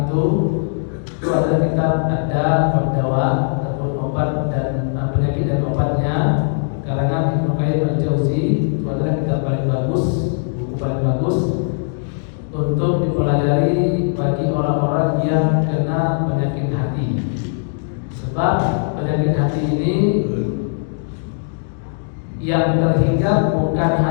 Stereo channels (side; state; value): right; silent; digital silence